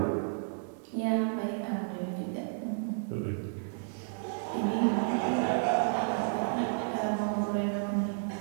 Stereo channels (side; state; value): left; silent; 55 dB below the other